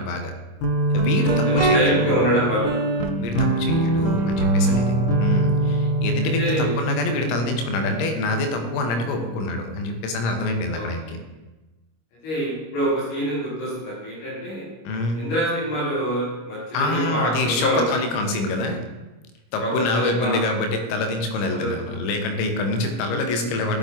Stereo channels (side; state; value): right; late; 26 ms